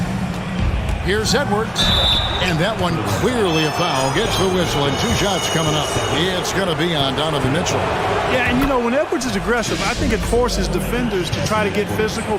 Here's Edwards. And that one clearly a foul. Gets the whistle and 2 shots coming up. It's going to be on Donovan Mitchell. Yeah, and you know, when Edwards is aggressive, I think it forces defenders to try to get physical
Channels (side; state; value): both; identical; correlation 1.00